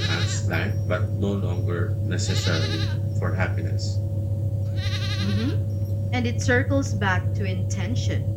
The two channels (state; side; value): identical; both; correlation 1.00